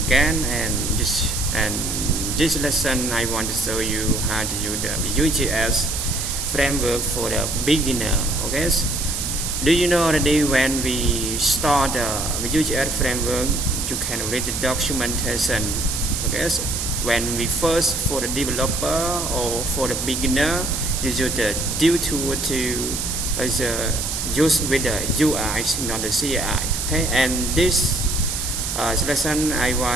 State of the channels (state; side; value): noise; right; hiss, 3 dB below the sound